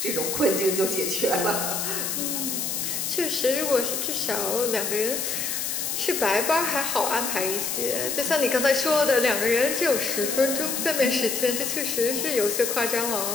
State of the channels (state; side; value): noise; left; hiss, 2 dB below the sound